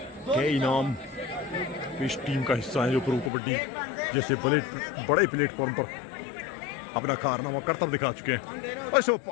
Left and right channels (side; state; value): right; drops out; at 3.3 s